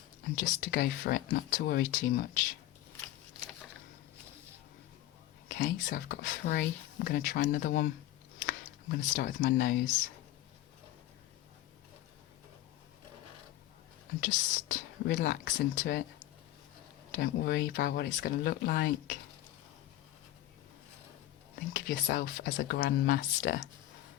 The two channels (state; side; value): quieter; right; 14.5 dB